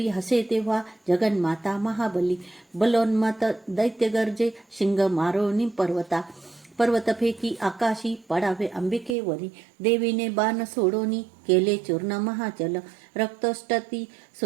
हसे तेव्हा जगन्माता महाबली. बलोन्मत दैत्य गर्जे शिंग मारोनी पर्वता. पर्वत फेकी आकाशी पडावे अंबिकेवरी. देवीने बाण सोडोनी केले चूर्ण महाचल. रक्तष्टती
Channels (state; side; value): drops out; left; at 9.2 s